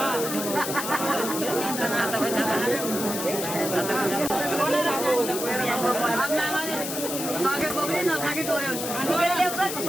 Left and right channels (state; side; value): noise; left; hiss, 5 dB below the sound